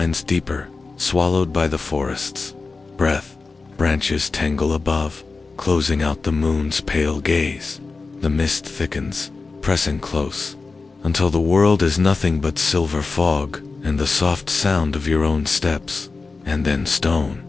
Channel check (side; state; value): right; quieter; 4.0 dB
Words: deeper, swallowed by the forest's breath. Branches tangle above, closing out the moon's pale gaze. The mist thickens, pressing close, until the world is nothing but silver fog and the soft sound of your own steps, and then stone.